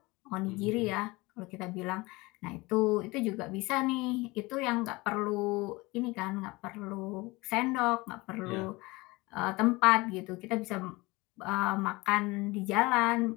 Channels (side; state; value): right; quieter; 22.7 dB